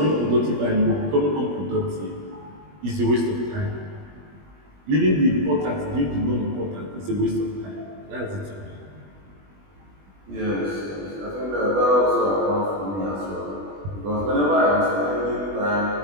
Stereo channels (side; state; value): left; late; 20 ms